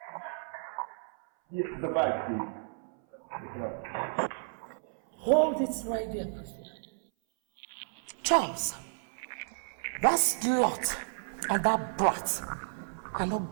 Yes, the bag, please. Pick it up. Hold it right there, Priscilla. Charles, that slut and that brat are not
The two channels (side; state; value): left; silent; 56 dB below the other